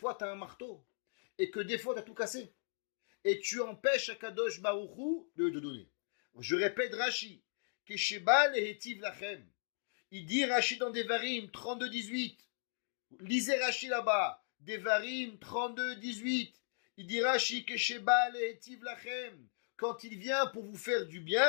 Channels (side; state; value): right; silent; digital silence